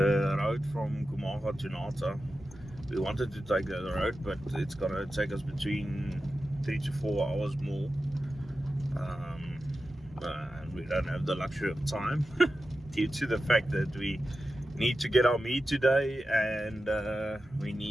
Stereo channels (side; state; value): both; normal; correlation 0.92